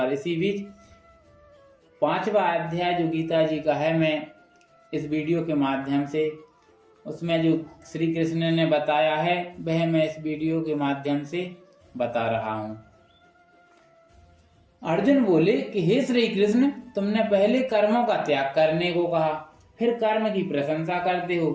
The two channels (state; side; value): identical; both; correlation 1.00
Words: इसी बीच 5वां अध्याय जो गीता जी का है, मैं इस वीडियो के माध्यम से उसमें जो श्री कृष्ण ने बताया है वह मैं इस वीडियो के माध्यम से बता रहा हूं। अर्जुन बोले कि हे श्री कृष्ण, तुमने पहले कर्मों का त्याग करने को कहा, फिर कर्म की प्रशंसा करते